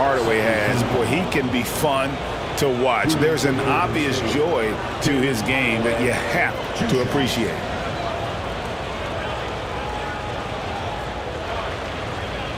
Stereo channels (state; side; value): identical; both; correlation 1.00